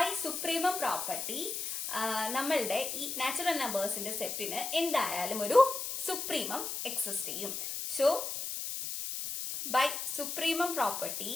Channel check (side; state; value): left; noise; hiss, 4 dB below the sound